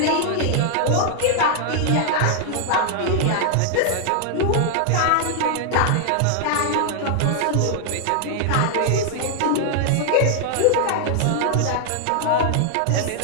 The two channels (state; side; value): different; both; correlation -0.01